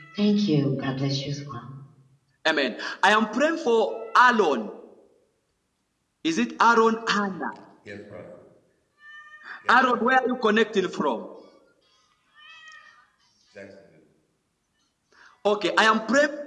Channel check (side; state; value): both; identical; correlation 1.00